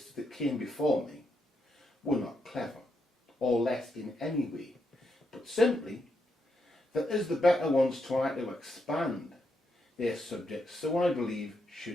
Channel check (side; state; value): both; normal; correlation 0.81